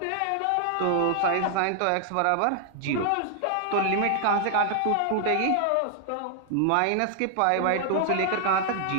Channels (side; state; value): both; different; correlation 0.00